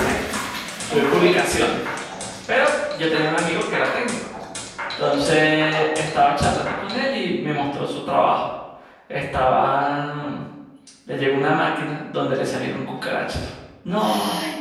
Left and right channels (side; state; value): both; identical; correlation 1.00